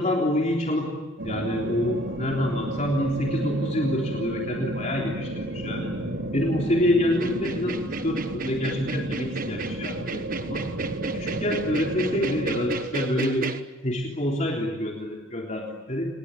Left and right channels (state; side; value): normal; both; correlation 0.57